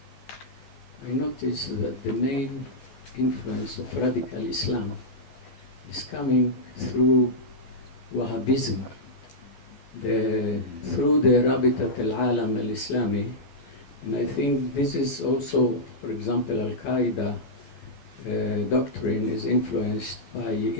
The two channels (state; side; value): late; right; 14 ms